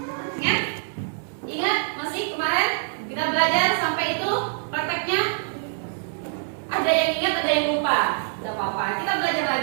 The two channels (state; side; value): silent; left; 62 dB below the other